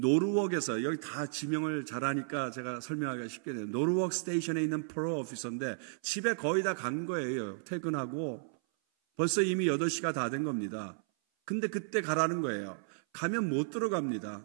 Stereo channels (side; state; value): left; silent; 55 dB below the other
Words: 여기 다 지명을 잘하니까 제가 설명하기가 쉽게 돼요. 노르웍 스테이션에 있는 프로 오피서인데 집에 거의 다 간 거예요. 퇴근하고 벌써 이미 8시가 다 된 겁니다. 근데 그때 가라는 거예요. 가면 못